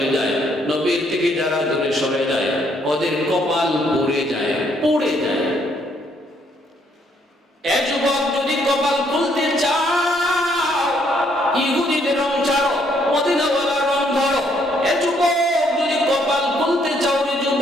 যায়, নবীর থেকে যারা দূরে সরে যায় ওদের কপাল পড়ে যায়, পড়ে যায়। এ যুবক, যদি কপাল খুলতে চাও ইহুদিদের রং ছাড়ো, মদিনাওয়ালার রং ধরো। এ যুবক, যদি কপাল খুলতে চাও রে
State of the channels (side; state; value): both; normal; correlation 0.69